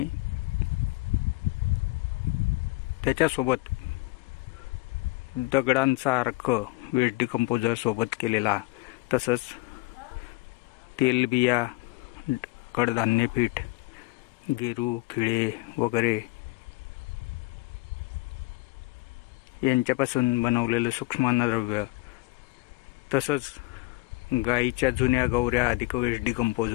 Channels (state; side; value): quieter; right; 22.4 dB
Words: त्याच्यासोबत दगडांचा अर्क वेस्ट डिकंपोजर सोबत केलेला, तसंच तेलबिया, कडधान्य पीठ, गेरू, खिळे वगैरे यांच्यापासून बनवलेलं सूक्ष्म अन्नद्रव्य, तसंच गाईच्या जुन्या गवऱ्या अधिक वेस्ट